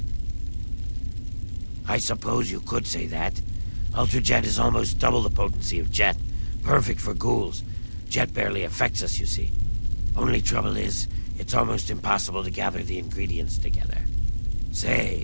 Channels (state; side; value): inverted; both; correlation -1.00